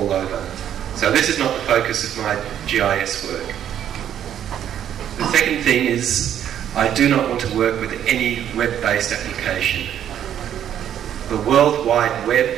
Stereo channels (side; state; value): left; quieter; 10.1 dB